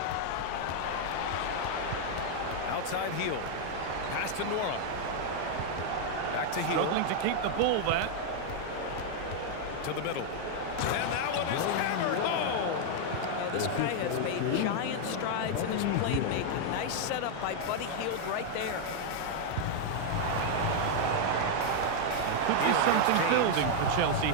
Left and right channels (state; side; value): different; both; correlation 0.00